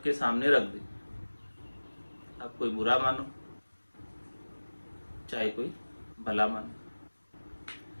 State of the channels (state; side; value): inverted; both; correlation -1.00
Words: सामने रख दी। अब कोई बुरा मानो चाहे कोई भला मानो,